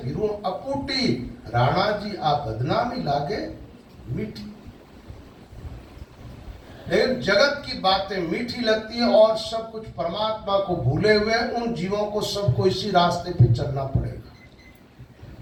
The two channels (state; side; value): identical; both; correlation 1.00